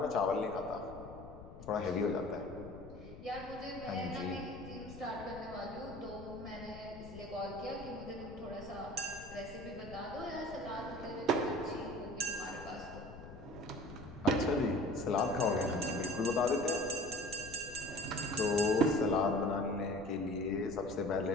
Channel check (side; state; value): left; noise; rumble, 15 dB below the sound